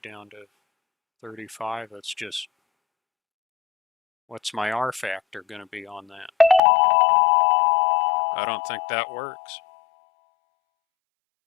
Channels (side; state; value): right; drops out; at 6.6 s